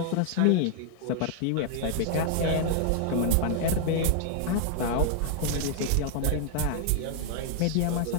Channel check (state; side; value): different; both; correlation 0.00